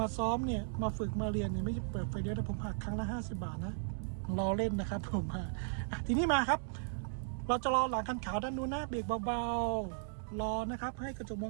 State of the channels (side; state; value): left; silent; digital silence